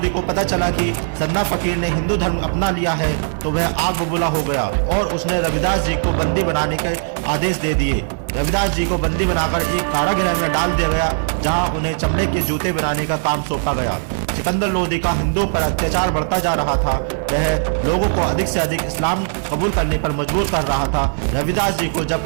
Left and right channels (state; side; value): silent; left; digital silence